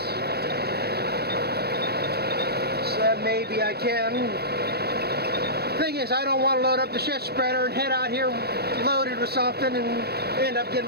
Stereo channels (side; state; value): left; late; 0.46 ms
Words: So that maybe I can. Thing is, I don't want to load up the shit spreader and head out here loaded with something and end up getting